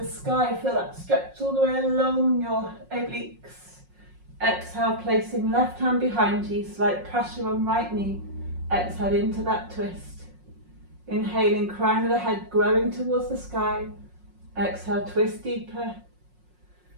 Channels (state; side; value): late; left; 5.5 ms